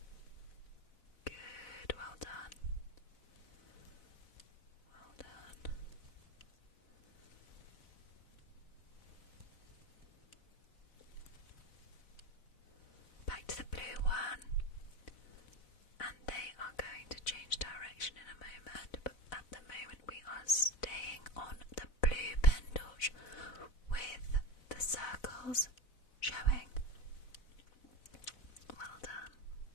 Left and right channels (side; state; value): right; late; 4.0 ms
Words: Good, well done. Well done. Back to the blue one. And they are going to change direction in a moment, but at the moment we are staying on the blue pen torch with the circles showing. Well done.